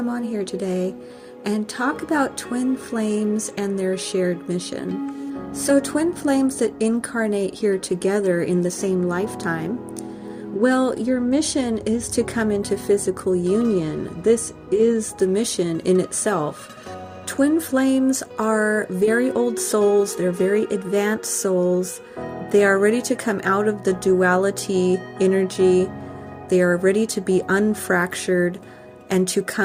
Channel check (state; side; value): identical; both; correlation 1.00